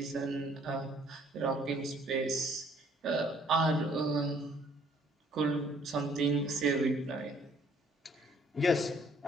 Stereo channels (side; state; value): both; normal; correlation 0.61